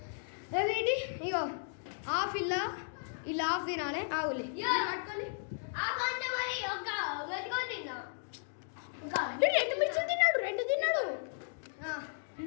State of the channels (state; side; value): silent; right; digital silence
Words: ఏంటి ఇగో హాఫ్ ఇలా హాఫ్ తినాలి. ఆవులే పట్టుకోవాలి. రెండు మిర్చి తిన్నాడు. రెండు తిన్నాడు.